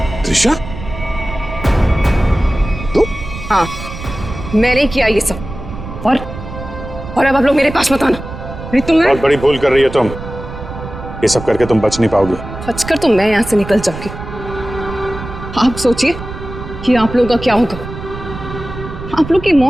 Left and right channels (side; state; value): right; noise; rumble, 11 dB below the sound